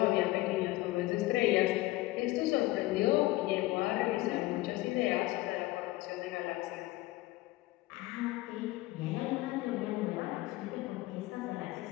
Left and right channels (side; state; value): right; quieter; 18.5 dB